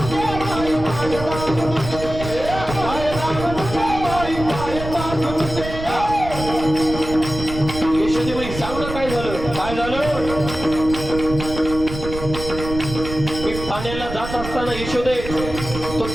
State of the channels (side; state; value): right; noise; rumble, 9 dB below the sound